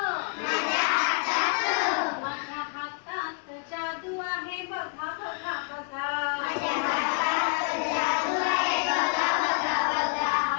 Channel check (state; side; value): quieter; right; 35.9 dB